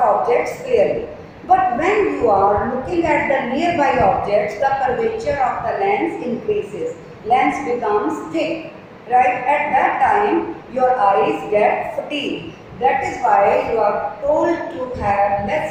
objects clearly. But when you are looking at the nearby objects, the curvature of the lens increases, lens becomes thick, right. At that time your eyes get fatigued. That is why you are told to have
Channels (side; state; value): both; identical; correlation 1.00